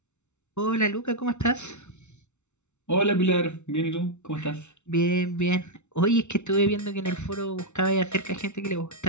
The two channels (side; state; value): right; late; 0.82 ms